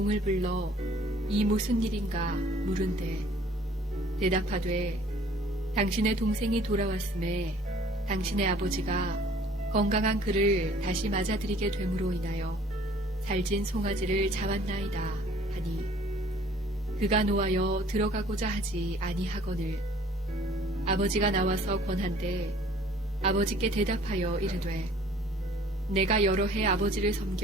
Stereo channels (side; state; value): both; normal; correlation 0.54